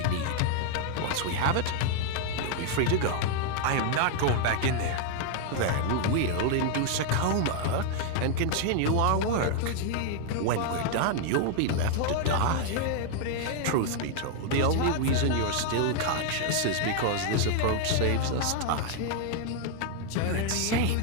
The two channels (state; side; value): different; both; correlation 0.00